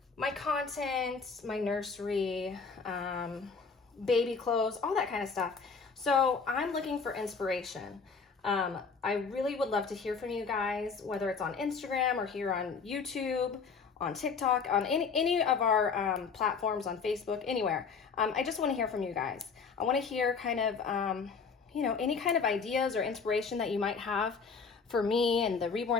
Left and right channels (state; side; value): quieter; right; 5.3 dB